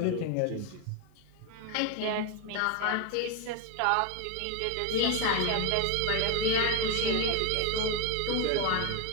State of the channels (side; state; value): both; different; correlation 0.01